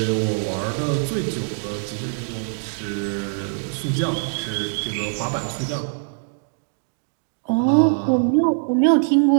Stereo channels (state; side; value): silent; left; digital silence